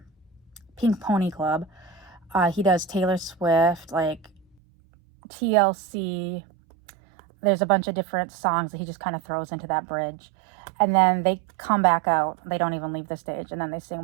Pink Pony Club. He does Taylor Swift, like TLC. There's a bunch of different songs that he just kind of throws into that bridge. And then they come back out. They don't even leave the stage. And then they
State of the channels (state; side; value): drops out; left; at 4.5 s